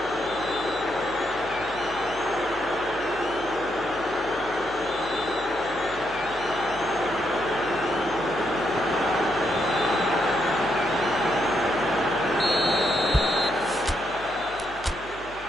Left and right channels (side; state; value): left; noise; hum, 19 dB below the sound